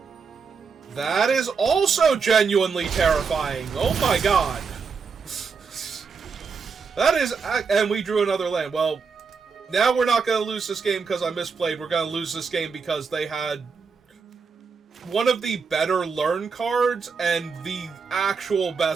That is also genuinely terrifying. Oh my god. That is... And we drew another land. Well, now we're not going to lose this game because I misplayed. We're going to lose this game because they had one of the better learn cards and the actual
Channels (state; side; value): quieter; left; 5.4 dB